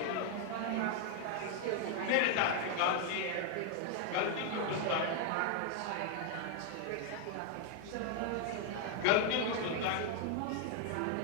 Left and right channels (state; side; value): different; both; correlation 0.00